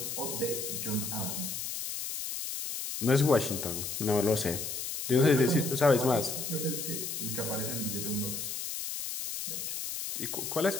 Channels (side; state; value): left; noise; hiss, 5 dB below the sound